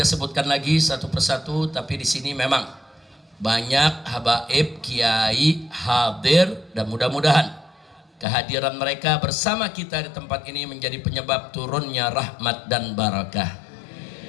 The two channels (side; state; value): right; drops out; at 8.2 s